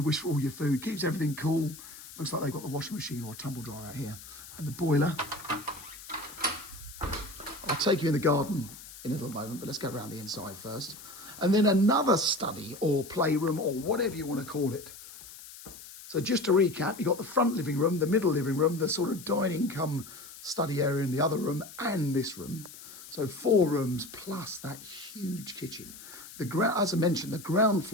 wish for all your food, keeps everything cool. Looks like they've got the washing machine or a tumble dryer out here. And the boiler. I'll take you in the garden in a little moment, but let's go around the inside first. And then another study or playroom or whatever you want to call it. So just to recap, you've got the front living room, the middle living room, the sort of dining come study area in the other room, and this room. So 4 rooms plus that huge kitchen. As I mentioned, the ground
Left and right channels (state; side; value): noise; left; hiss, 16 dB below the sound